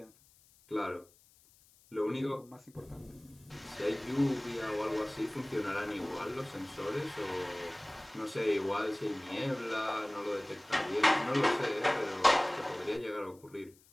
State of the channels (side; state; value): left; noise; hiss, 28 dB below the sound